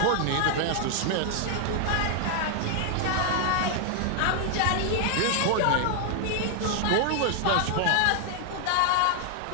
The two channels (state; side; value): different; both; correlation 0.00